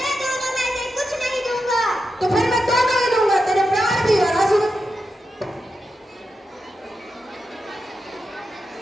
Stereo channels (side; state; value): both; normal; correlation 0.88